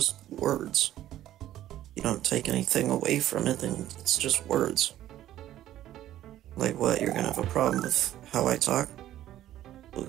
words. You don't take anything away from it, then it's just words. Like what, you're gonna have a problem with how I talk? Well,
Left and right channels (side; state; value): left; quieter; 13.0 dB